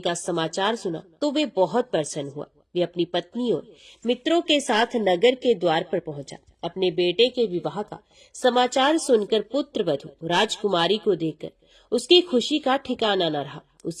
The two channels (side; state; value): both; identical; correlation 1.00